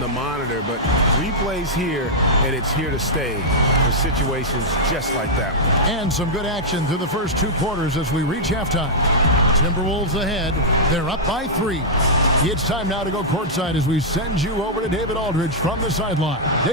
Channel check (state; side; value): normal; both; correlation -0.07